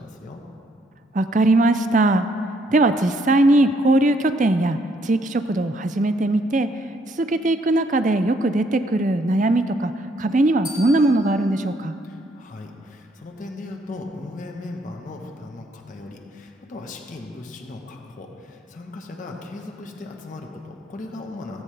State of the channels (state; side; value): normal; both; correlation 0.69